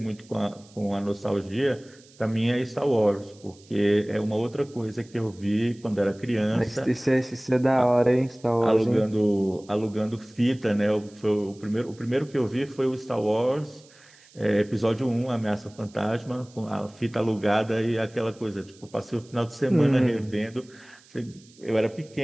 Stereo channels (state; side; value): noise; right; hiss, 26 dB below the sound